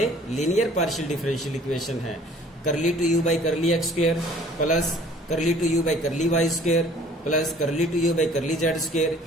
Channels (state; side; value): normal; both; correlation 0.53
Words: लीनियर पार्शियल डिफरेंशियल इक्वेशन है। करली 2u by curly x square plus करली 2u by curly y square plus करली 2u by curly z square.